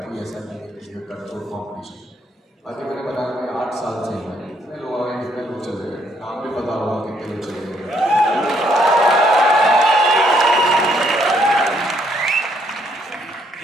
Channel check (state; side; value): normal; both; correlation 0.70